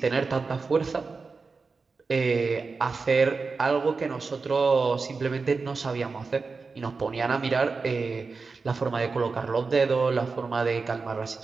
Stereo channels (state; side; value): quieter; left; 4.4 dB